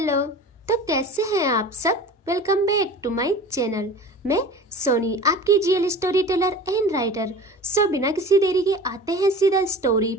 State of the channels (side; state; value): both; normal; correlation 0.38